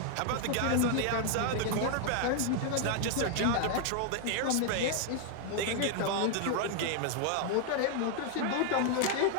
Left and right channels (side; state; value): both; different; correlation 0.00